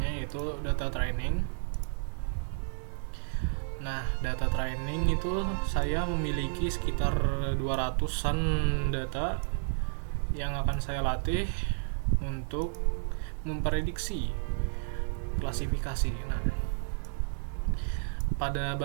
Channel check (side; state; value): left; silent; 57 dB below the other